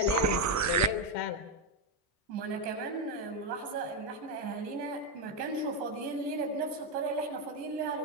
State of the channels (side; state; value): both; normal; correlation 0.05